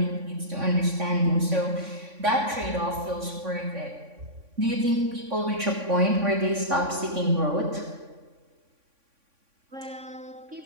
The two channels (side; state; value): left; late; 3.6 ms